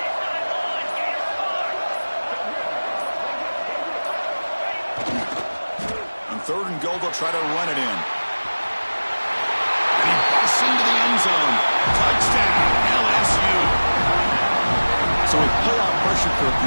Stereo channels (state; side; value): inverted; both; correlation -1.00